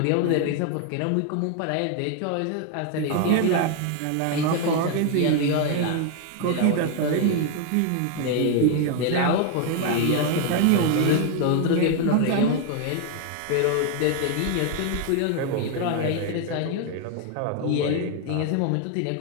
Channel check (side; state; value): both; different; correlation 0.00